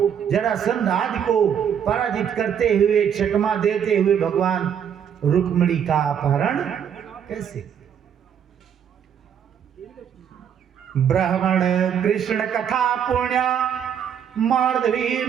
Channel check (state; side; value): quieter; left; 8.4 dB